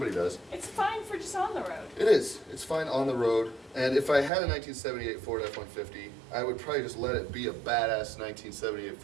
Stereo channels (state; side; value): drops out; left; at 4.3 s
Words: does. It's fine for just on the road. It is. It's fine on the road. And if I had a 1978 Ford F-150, I would probably just let it be a badass 1978